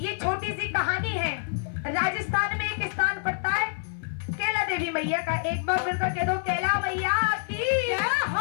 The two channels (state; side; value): silent; right; 60 dB below the other